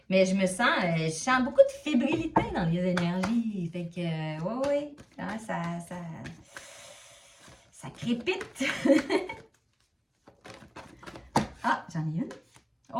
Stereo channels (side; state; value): both; identical; correlation 1.00